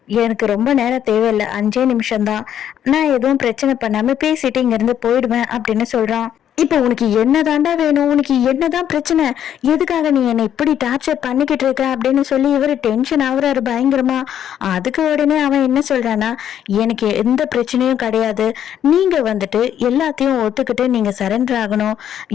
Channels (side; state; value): right; quieter; 10.0 dB